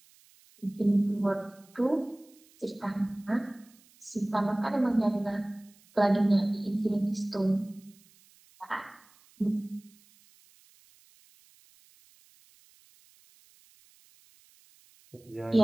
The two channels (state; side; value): noise; right; hiss, 29 dB below the sound